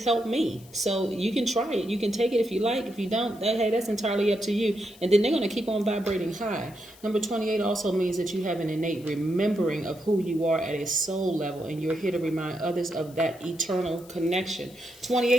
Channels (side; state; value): left; noise; hiss, 24 dB below the sound